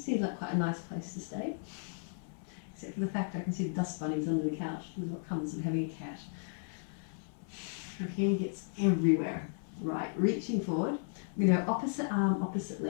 seems like quite a nice place to stay. Except for the fact I can see the dust bunnies under the couch. This is what comes with having a cat. Her hair gets everywhere. Right, reaching forward. I'm going to go opposite arm, opposite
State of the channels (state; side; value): silent; right; 55 dB below the other